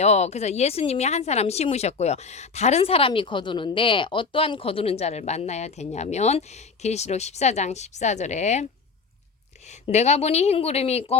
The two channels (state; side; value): quieter; right; 4.9 dB